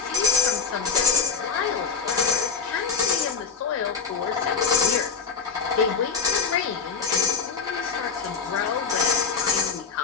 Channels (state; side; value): quieter; right; 5.6 dB